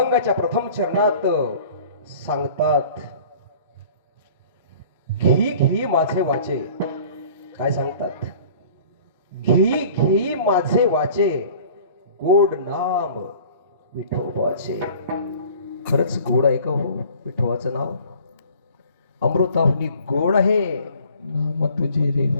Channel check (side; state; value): both; inverted; correlation -0.48